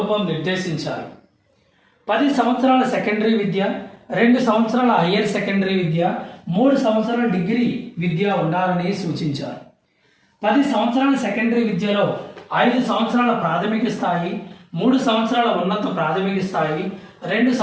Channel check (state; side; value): identical; both; correlation 1.00